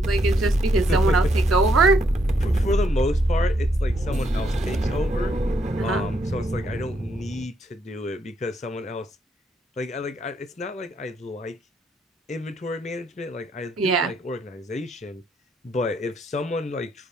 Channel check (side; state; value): both; normal; correlation 0.74